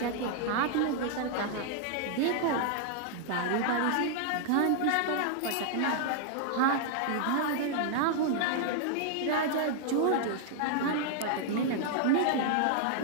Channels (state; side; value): different; both; correlation -0.01